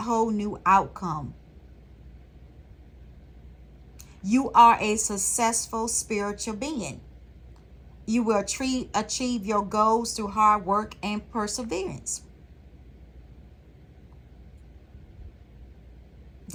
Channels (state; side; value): identical; both; correlation 1.00